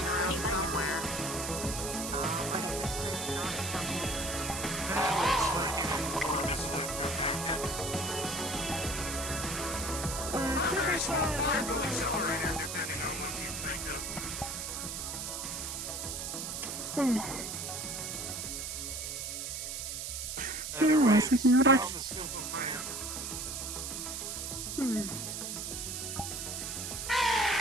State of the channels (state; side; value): noise; right; hiss, 4 dB below the sound